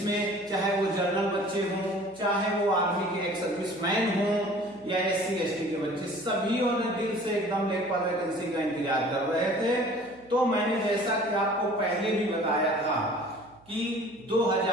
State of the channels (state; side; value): noise; right; hum, 28 dB below the sound